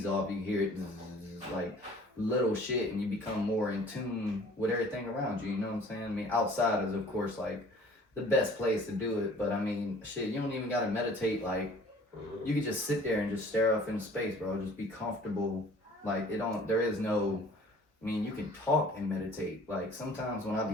off, you hear it like little shit, and you become more in tune with everything around you. You know what I'm saying? I mean, outside is of course like the best place to do it, but I mean, shit, you don't even gotta meditate. Like, you can just sit there and just stare off into space, bro. Just be comfortable. Like, there is no, I mean, you can talk and meditate. Like, sometimes when I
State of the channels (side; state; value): both; normal; correlation 0.51